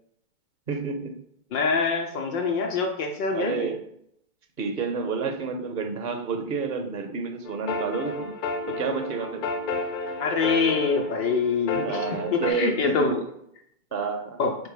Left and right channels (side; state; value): right; late; 2.2 ms